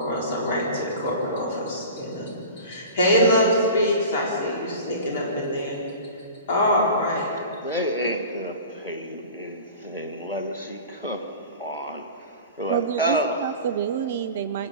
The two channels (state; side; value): inverted; both; correlation -0.37